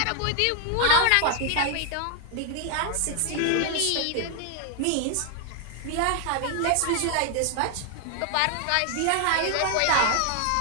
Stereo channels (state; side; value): different; both; correlation 0.00